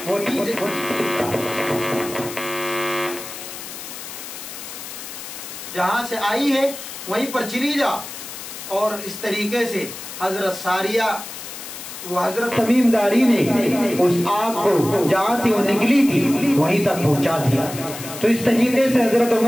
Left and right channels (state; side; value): noise; left; hiss, 11 dB below the sound